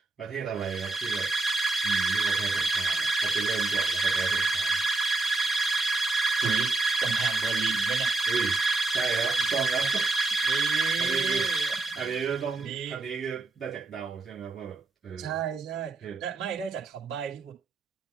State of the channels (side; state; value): left; quieter; 3.4 dB